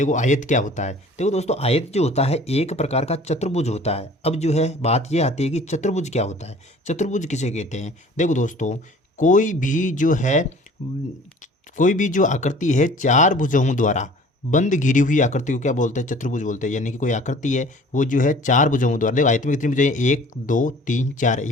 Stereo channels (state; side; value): normal; both; correlation 0.48